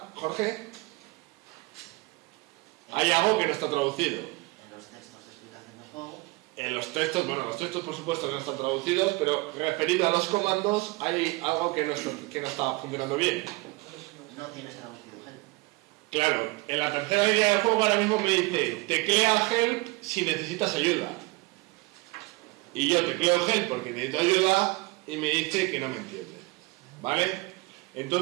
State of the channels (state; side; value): quieter; left; 24.2 dB